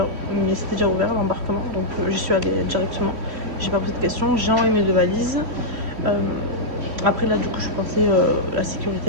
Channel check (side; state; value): left; late; 3.1 ms